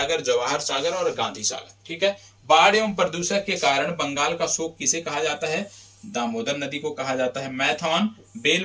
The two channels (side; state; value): both; identical; correlation 1.00